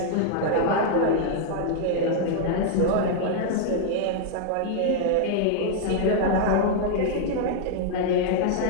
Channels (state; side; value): different; both; correlation -0.01